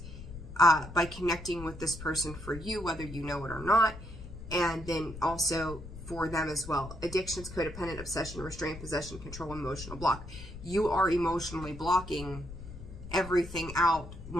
by connecting with this person for you, whether you know it or not, and then also for them as well. Addictions, codependent, obsession, restraint, possession, control, emotional block. You are emotionally blocking everything out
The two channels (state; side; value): noise; left; rumble, 12 dB below the sound